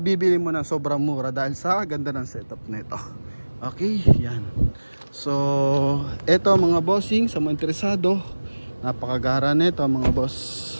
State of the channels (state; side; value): inverted; both; correlation -1.00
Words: mo na sobrang mura dahil sa ganda ng setup nito. Okay, yan. So ito mga bossing, sa mga interesado, napakagara nito mga boss.